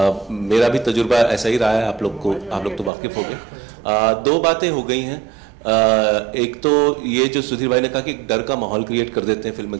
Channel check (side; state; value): left; drops out; at 2.9 s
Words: मेरा भी तजुर्बा ऐसा ही रहा है, आप लोग तो वाकिफ हो गए। 2 बातें हो गई हैं। एक तो ये जो सुधीर भाई ने कहा कि एक डर का माहौल क्रिएट कर देते हैं फिल्म